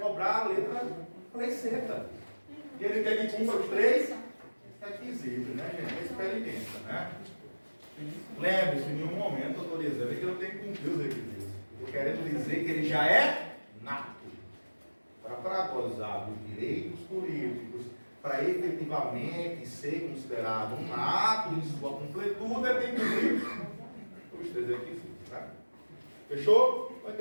a lei seca. E ele quer que cumpra os 3 requisitos, né, gente? É experiência, né? Lembre-se, em nenhum momento eu estou dizendo que ele não tem que cumprir os requisitos. Estou querendo dizer que ele já é nato. Para gozar dos direitos políticos, para efetivamente ser considerado um nato em sua completude, ele tem que cumprir os 3 requisitos, né? Fechou? Vai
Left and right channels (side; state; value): both; inverted; correlation -1.00